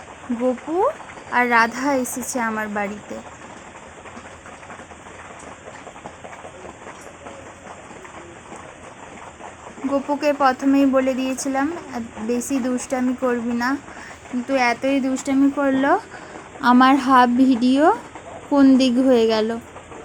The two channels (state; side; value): identical; both; correlation 1.00